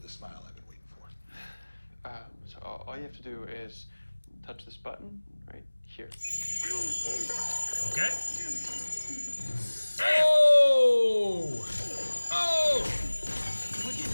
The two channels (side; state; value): both; inverted; correlation -1.00